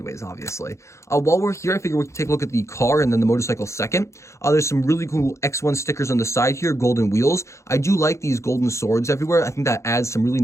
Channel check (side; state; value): right; late; 0.14 ms